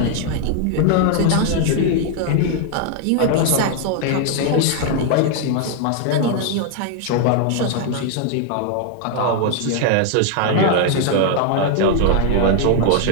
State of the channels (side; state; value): both; different; correlation 0.00